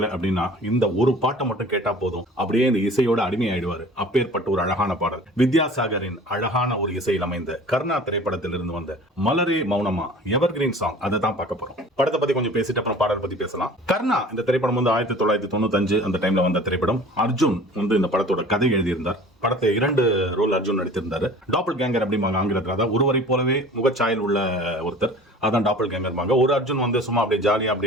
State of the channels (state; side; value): normal; both; correlation 0.44